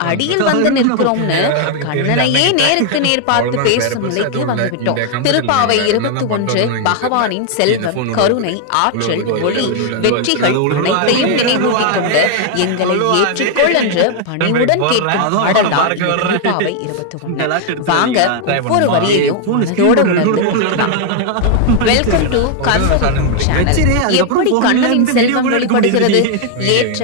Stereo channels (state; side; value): different; both; correlation 0.00